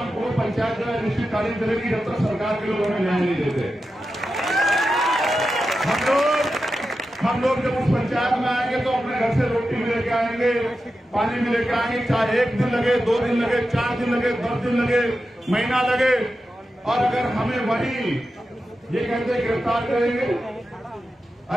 को पंचायत जो है निश्चितकालीन चलेगी जब तक सरकार के लोग हमें न्याय नहीं देते। हम लोग जब उस पंचायत में आएंगे तो अपने घर से रोटी भी लेके आएंगे, पानी भी लेके आएंगे, चाहे 1 दिन लगे, 2 दिन लगे, 4 दिन लगे, 10 दिन लगे, महीना लगे। और अगर हमें वही ये कहते गिरफ्तार करेंगे,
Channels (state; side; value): normal; both; correlation 0.91